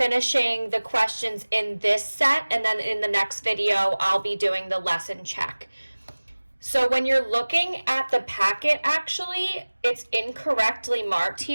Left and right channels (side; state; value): both; inverted; correlation -1.00